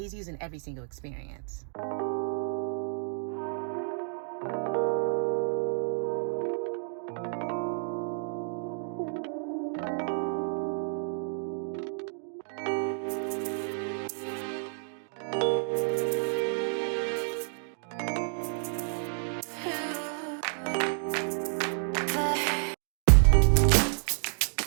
using every single experience.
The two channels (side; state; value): left; silent; 58 dB below the other